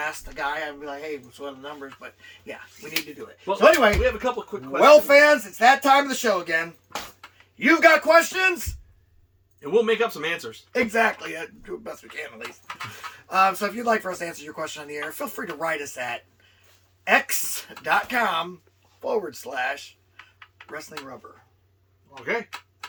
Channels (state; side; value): identical; both; correlation 1.00